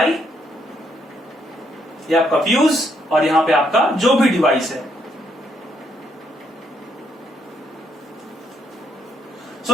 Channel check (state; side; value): normal; both; correlation 0.74